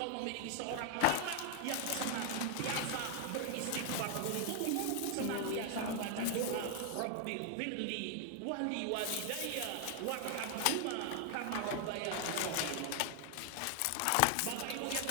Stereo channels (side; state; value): both; different; correlation 0.00